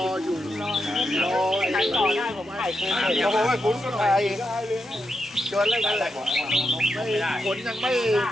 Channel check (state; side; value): normal; both; correlation 0.85